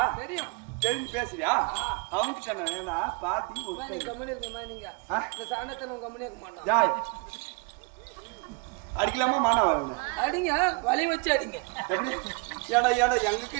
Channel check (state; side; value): quieter; left; 31.8 dB